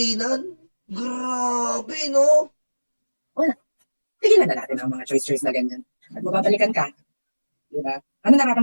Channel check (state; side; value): inverted; both; correlation -1.00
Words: Grabe no. tigilan na natin ang mga choice na ganyan. At mababalikan ka, di ba? Ano